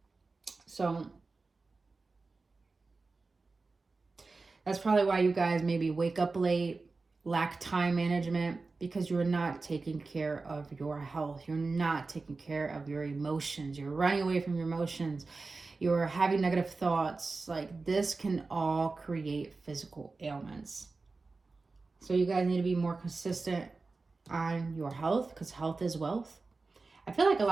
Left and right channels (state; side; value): quieter; left; 3.9 dB